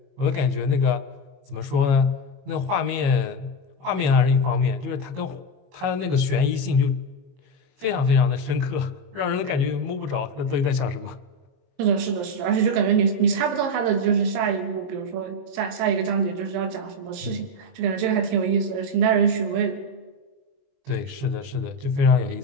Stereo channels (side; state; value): left; late; 22 ms